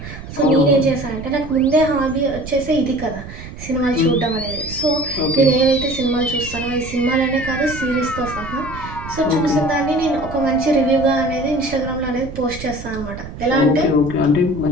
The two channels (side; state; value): right; noise; rumble, 12 dB below the sound